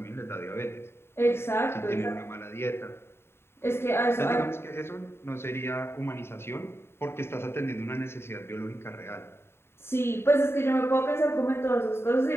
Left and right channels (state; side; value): late; right; 0.12 ms